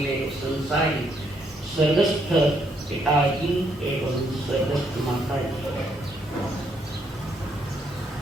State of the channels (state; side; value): normal; both; correlation 0.73